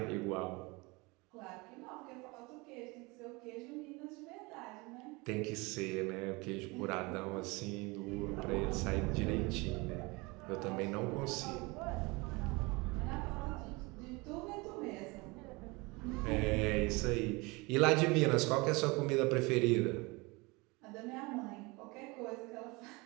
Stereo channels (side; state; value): left; quieter; 25.5 dB